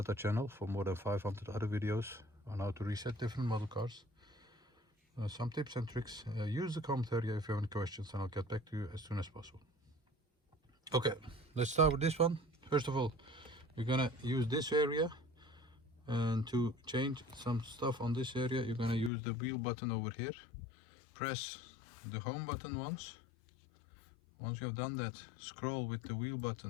our channel for more than 500 other videos on how to reset different model cars. Some tips and tricks. Use the comment area if you have any questions, and I'll get back to you as soon as possible. Okay, let's start with this one. First of all, we're gonna use this area, and to change some stuff on this area, you're gonna use the wheel button over here. Press the home button once. Once you have done that, scroll with the wheel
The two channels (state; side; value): drops out; right; at 19.1 s